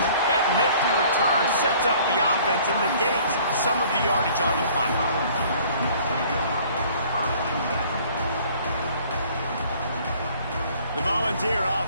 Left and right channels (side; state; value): both; inverted; correlation -0.54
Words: That nifty return sets up the offense and negates some of the yardage on the punt. The Volunteer